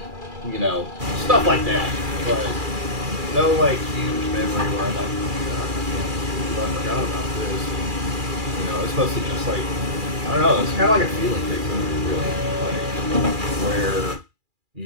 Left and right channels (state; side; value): late; left; 2.4 ms